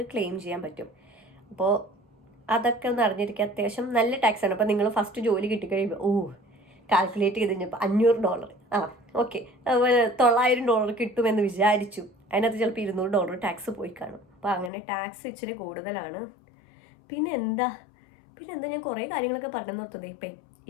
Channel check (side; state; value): right; drops out; at 14.7 s